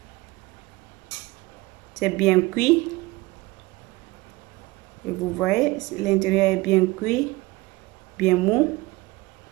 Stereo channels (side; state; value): left; quieter; 21.5 dB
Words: C'est bien cuit. Et vous voyez, l'intérieur est bien cuit, bien mou,